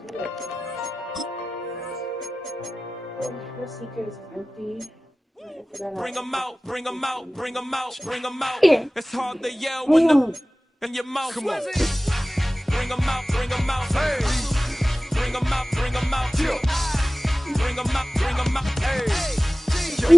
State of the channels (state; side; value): normal; both; correlation 0.97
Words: Bring them out, bring them out, bring them out, bring them out. It's hard to yell when the in your mouth. Come on. Bring them out, bring them out. Hey. Bring them out, bring them out. Bring them out, bring them out. Hey.